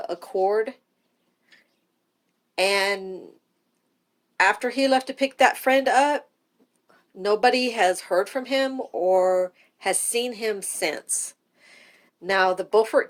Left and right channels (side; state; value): both; identical; correlation 1.00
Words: Accord, and after he left to pick that friend up, nobody has heard from him or has seen him since. Now, the Beaufort